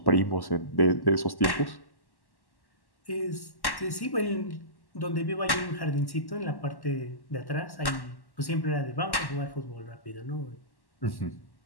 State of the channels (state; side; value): late; right; 1.1 ms